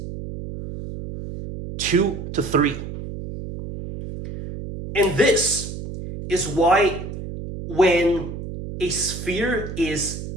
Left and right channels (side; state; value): right; noise; hum, 9 dB below the sound